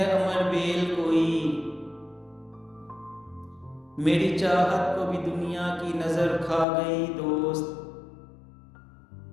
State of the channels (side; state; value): right; drops out; at 6.7 s